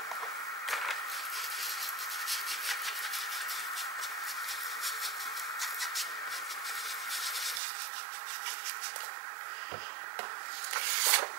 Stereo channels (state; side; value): drops out; left; at 7.6 s